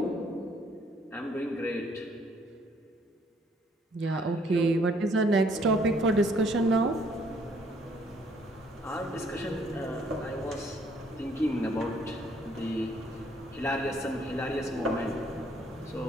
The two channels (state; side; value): normal; both; correlation 0.64